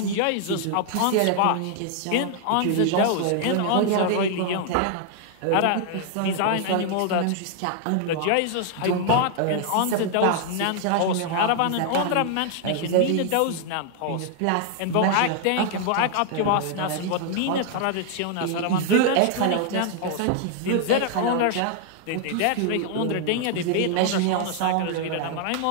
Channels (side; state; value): both; different; correlation 0.00